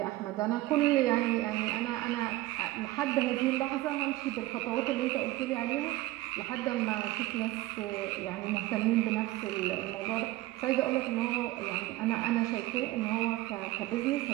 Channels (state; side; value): quieter; left; 17.6 dB